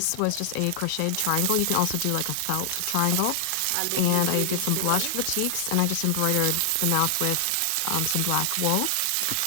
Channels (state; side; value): different; both; correlation 0.00